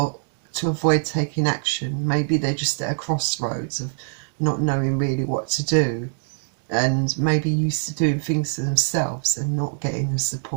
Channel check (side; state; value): left; silent; digital silence